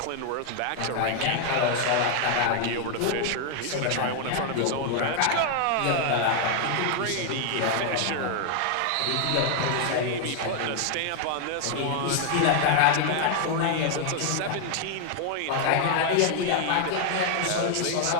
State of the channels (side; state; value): both; different; correlation 0.00